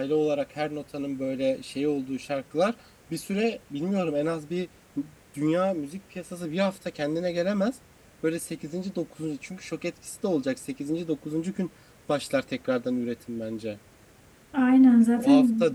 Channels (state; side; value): identical; both; correlation 1.00